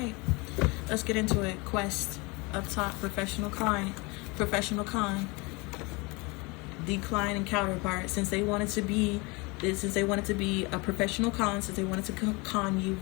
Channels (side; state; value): right; quieter; 27.0 dB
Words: Let's get into it. Quest. Up top, professional client, professional con, decline and counterpart. Since they wanted to be a professional con, since they wanted to con you,